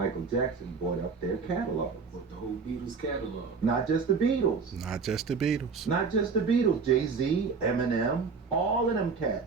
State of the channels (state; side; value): quieter; left; 5.1 dB